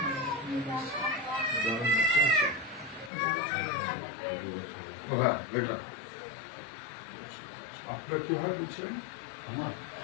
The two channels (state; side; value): drops out; right; at 3.1 s